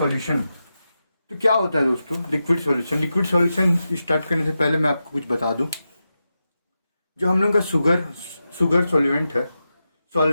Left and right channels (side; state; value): both; inverted; correlation -0.90